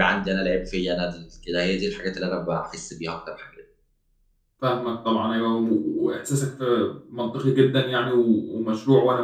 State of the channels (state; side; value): identical; both; correlation 1.00